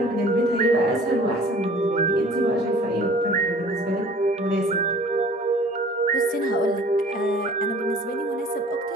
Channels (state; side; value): normal; both; correlation 0.49